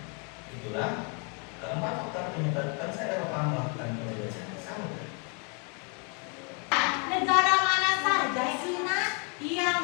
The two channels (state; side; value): quieter; right; 36.3 dB